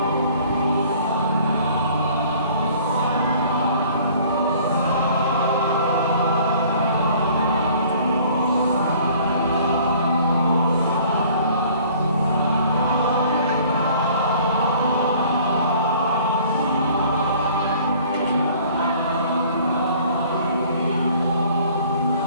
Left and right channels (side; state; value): both; inverted; correlation -0.53